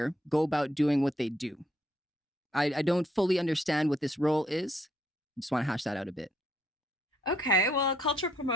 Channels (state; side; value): normal; both; correlation 0.71